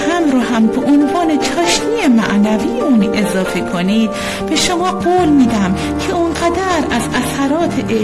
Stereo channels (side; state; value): both; identical; correlation 1.00